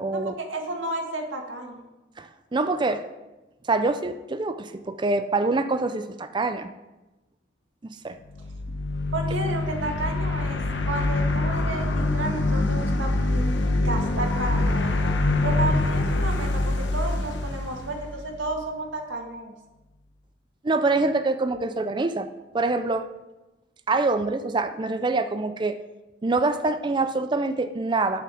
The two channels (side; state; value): both; normal; correlation 0.51